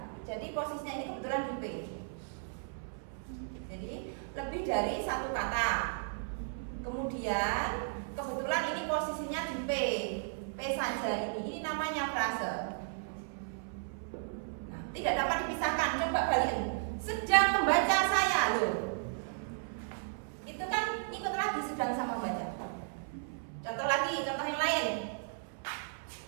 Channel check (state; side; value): silent; left; 55 dB below the other